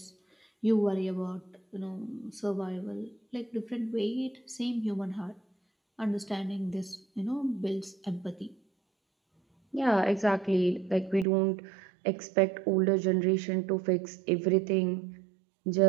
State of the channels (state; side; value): drops out; left; at 11.2 s